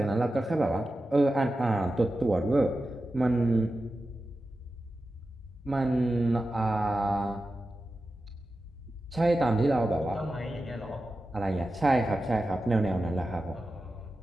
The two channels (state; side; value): normal; both; correlation 0.92